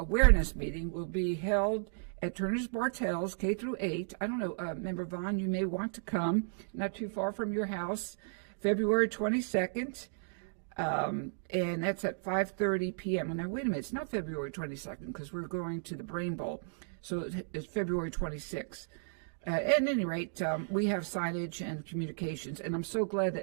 meeting will be held at Turner's Bartels, K through 8. I don't know, Member Vaughn, you may want to come, not too far from your house, February 22nd, and that's at 5:30 p.m. Now, wait a minute, it's not February 22nd because we're going to the Brain Bowl, so it's February 26th. At any rate, we have signage and communications, and I'm so glad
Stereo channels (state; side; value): silent; left; digital silence